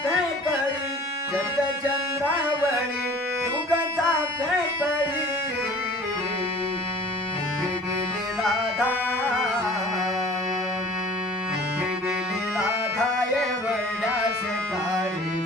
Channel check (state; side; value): normal; both; correlation 0.47